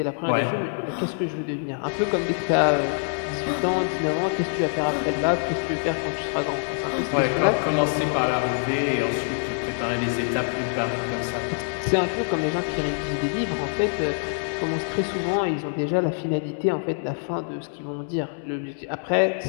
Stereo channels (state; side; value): silent; right; 62 dB below the other